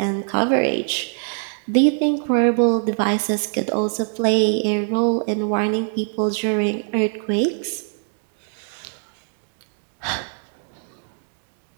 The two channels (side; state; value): left; silent; digital silence